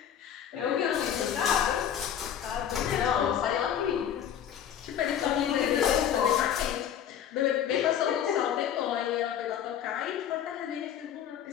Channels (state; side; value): quieter; right; 9.5 dB